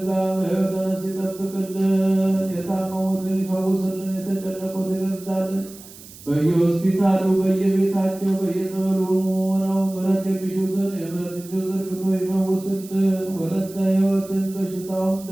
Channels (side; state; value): right; noise; hiss, 19 dB below the sound